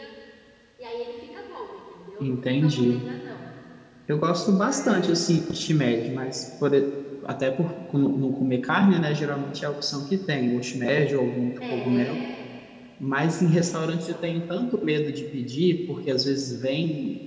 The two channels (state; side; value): identical; both; correlation 1.00